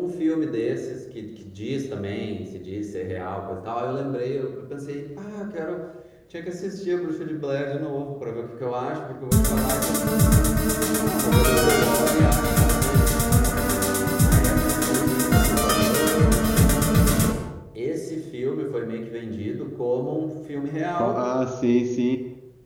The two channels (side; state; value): both; identical; correlation 1.00